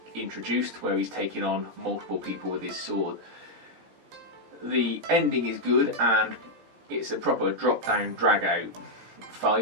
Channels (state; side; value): late; left; 18 ms